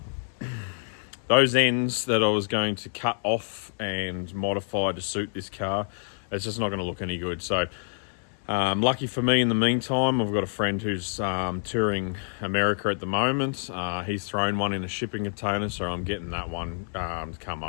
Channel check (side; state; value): right; silent; 60 dB below the other